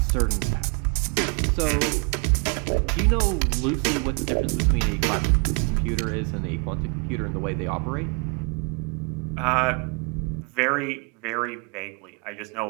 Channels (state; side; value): quieter; left; 33.6 dB